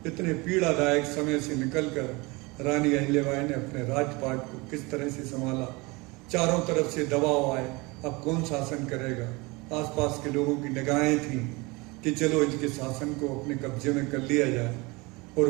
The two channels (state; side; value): quieter; left; 25.2 dB